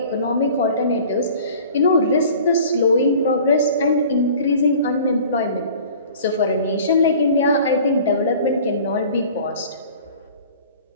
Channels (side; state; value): both; inverted; correlation -0.46